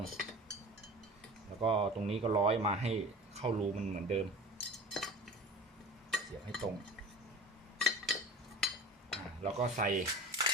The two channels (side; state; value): both; normal; correlation 0.38